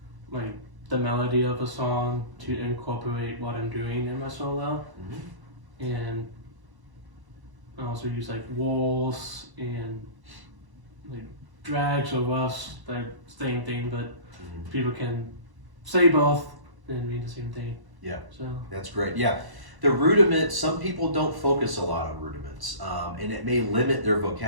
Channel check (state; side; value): late; left; 1.1 ms